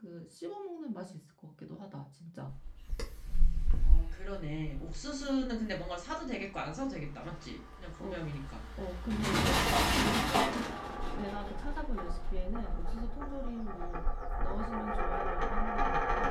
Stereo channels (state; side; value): identical; both; correlation 1.00